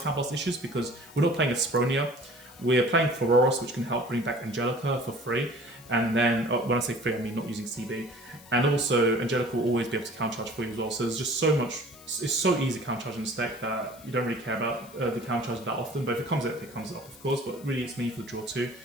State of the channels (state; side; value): noise; left; hiss, 22 dB below the sound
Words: counterblast issues because we're not playing a Spronia, We're playing Floros, which can help bring back Angelica for free. And then, when I say free, I mean not using CB. And also, Angelica will always be able to countercharge for you as well. So there's just so much, it's so easy countercharging this deck that you don't really care about the countercharge that often. But if it comes up, it comes up, of course. But really, it's mainly for the draw too.